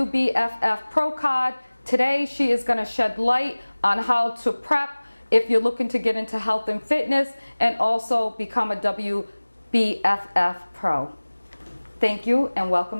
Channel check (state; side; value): inverted; both; correlation -1.00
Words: Pro card. Today she is going to shed light on how to prep if you're looking to get into health and fitness and also become a WBFF Pro. Thank you and